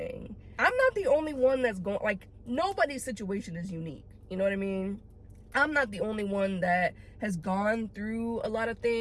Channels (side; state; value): both; identical; correlation 1.00